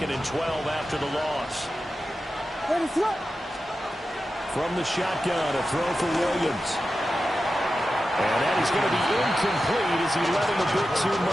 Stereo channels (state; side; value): normal; both; correlation 0.92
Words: and 12 after the loss. From the shotgun, a throw for Williams. And that is going to be incomplete as he let him a bit too